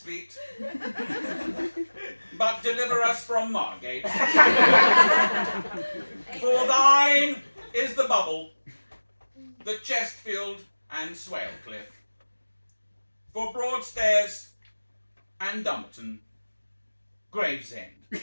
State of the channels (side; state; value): both; inverted; correlation -1.00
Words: but deliver us from Margate. For thine is the Bubble, the Chestfield and Swalcliffe. For Broadstairs and Dumbarton, Gravesend.